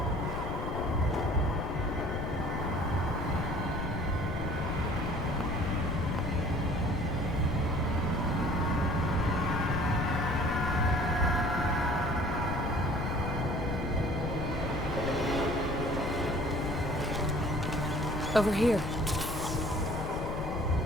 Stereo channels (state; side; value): noise; left; rumble, 6 dB below the sound